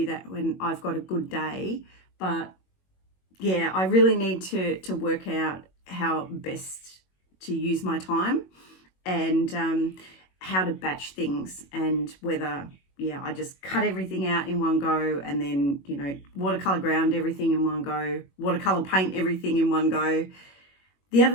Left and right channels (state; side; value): late; right; 21 ms